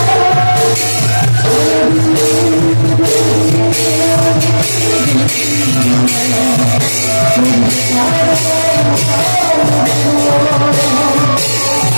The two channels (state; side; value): inverted; both; correlation -1.00